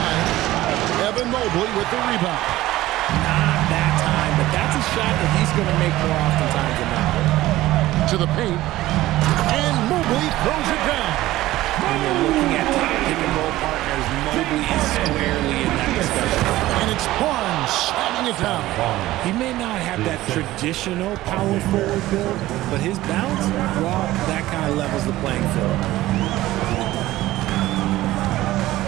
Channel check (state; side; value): quieter; left; 16.3 dB